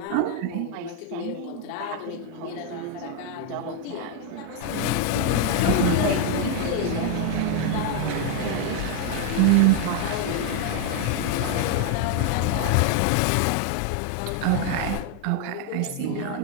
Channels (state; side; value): different; both; correlation 0.00